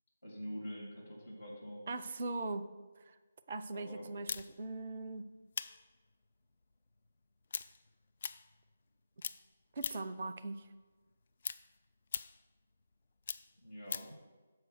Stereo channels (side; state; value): both; inverted; correlation -0.82